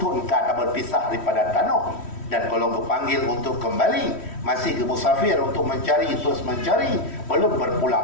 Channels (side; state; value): right; late; 3.1 ms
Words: engkau tak berpisah daripada tanah. Dan kalau kepanggil untuk kembali, masih ke musafir untuk mencari, terus mencari, belum